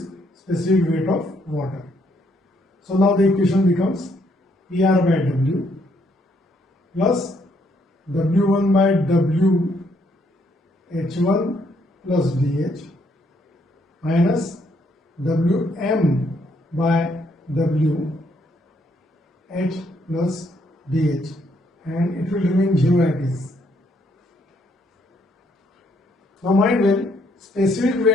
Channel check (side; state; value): both; normal; correlation 0.71